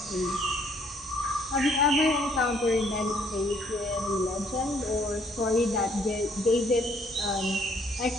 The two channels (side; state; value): both; normal; correlation 0.65